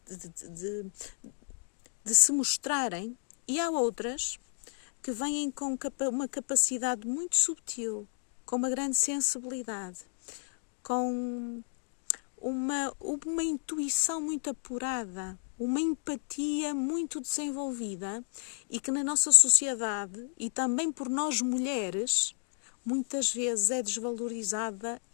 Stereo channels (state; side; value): silent; right; digital silence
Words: de se mostrarem. E há outras que vêm com uma capacidade muito subtil, com uma grande sensibilidade, com uma intuição muito apurada, uma empatia muito desenvolvida e que na nossa sociedade e também por nós mulheres muitas vezes é desvalorizada